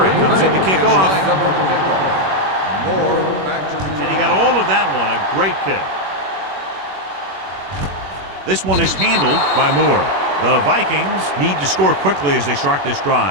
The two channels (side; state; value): left; late; 21 ms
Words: comes in to kick off. Moore back to return. And he got all of that one. A great kick. This one is handled by Moore. The Vikings need to score quickly as they start this